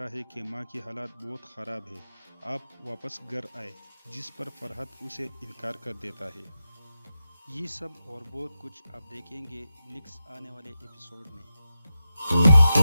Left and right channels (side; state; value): both; inverted; correlation -0.89